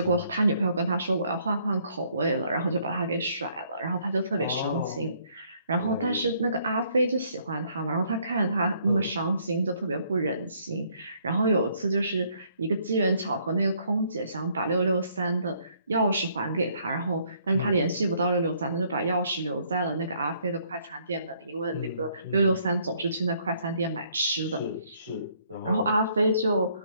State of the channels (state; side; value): inverted; both; correlation -0.67